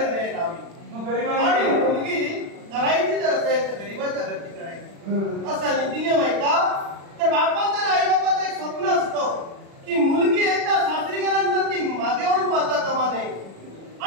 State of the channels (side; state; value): left; late; 36 ms